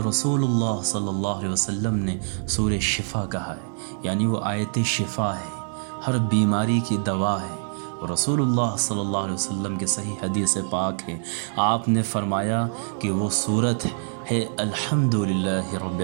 رسول اللہ صلی اللہ علیہ وسلم نے سورہ شفا کہا ہے، یعنی وہ آیت شفا ہے، ہر بیماری کی دوا ہے۔ اور رسول اللہ صلی اللہ علیہ وسلم کے صحیح حدیث پاک ہے، آپ نے فرمایا کہ وہ صورت ہے الحمدللہ رب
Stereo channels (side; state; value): left; silent; digital silence